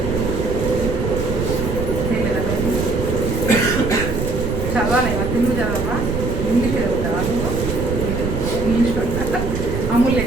చదవాలి, తెలుగు చదవా, ఇంగ్లీష్ చదువుతావా? నువ్వు ఇంగ్లీష్ పడతా, అమూల్య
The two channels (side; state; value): right; noise; rumble, 3 dB below the sound